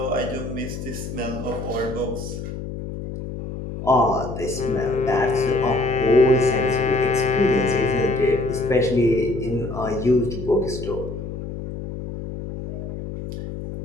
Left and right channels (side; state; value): left; noise; hum, 8 dB below the sound